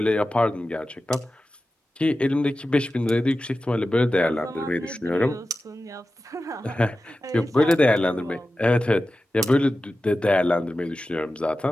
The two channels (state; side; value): normal; both; correlation 0.94